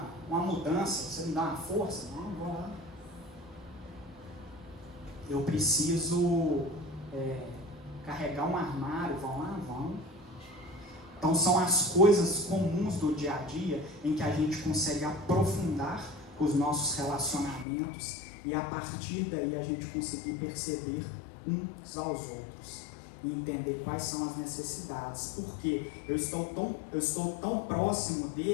mudança, você me dá uma força? Não, vou lá. Eu preciso carregar um armário, vão lá? Vão. Então são as coisas comuns do dia a dia em que a gente consegue aprofundar os nossos relacionamentos e a partir daí a gente conseguir perceber uns aos outros e entender quais são as necessidades. Porque eu estou tão próximo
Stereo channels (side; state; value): right; drops out; at 17.7 s